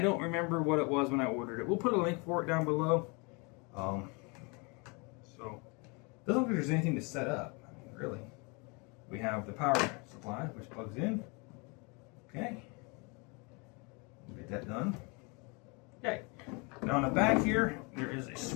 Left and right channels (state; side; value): quieter; right; 30.6 dB